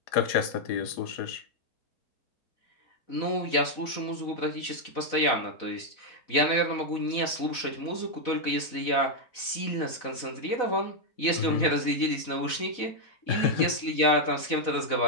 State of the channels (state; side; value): late; right; 4.0 ms